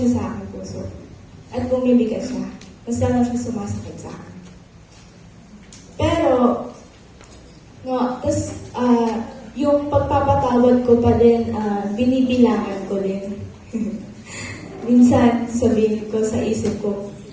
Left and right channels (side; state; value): both; identical; correlation 1.00